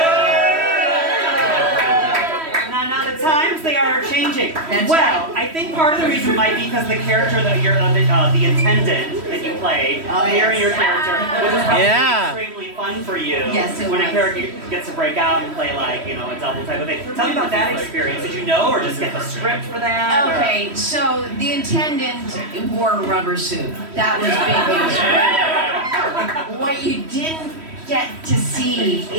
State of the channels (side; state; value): left; late; 3.1 ms